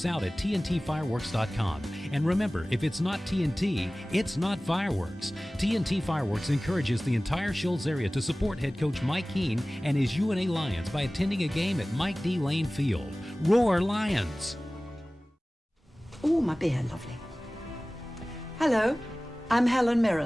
out at TNTfireworks.com. And remember, if it's not TNT, it's not fireworks. TNT Fireworks encourages the entire Shoals area to support head coach Mike Keene and his UNA Lions by attending a game at Mike D. Lane Field. Roar Lions! Oh, my beer, lovely. Hello, I'm Helen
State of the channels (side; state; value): both; normal; correlation 0.98